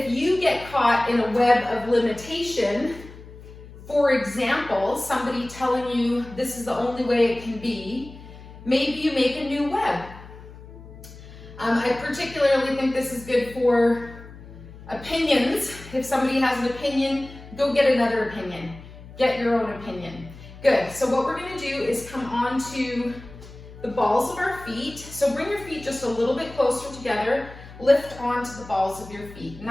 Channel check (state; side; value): noise; left; hum, 17 dB below the sound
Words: you get caught in a web of limitation, for example, somebody telling you this is the only way it can be, maybe you make a new web. I particularly think this is good for opinions. If somebody has an opinion, go get another opinion. Get your own opinion. Good. So what we're going to do is come onto the balls of our feet. So bring your feet just a little bit closer together. Lift onto the balls of your feet. And